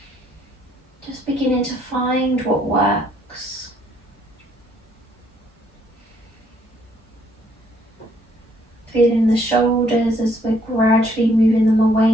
Just beginning to find what works. Feeling the shoulders as we're gradually moving them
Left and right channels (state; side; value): normal; both; correlation 0.67